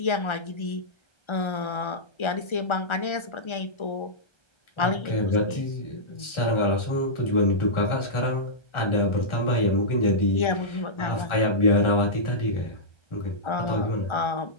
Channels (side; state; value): right; late; 1.4 ms